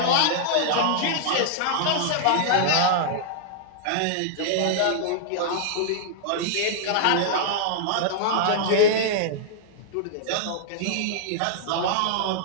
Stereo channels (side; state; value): both; different; correlation -0.01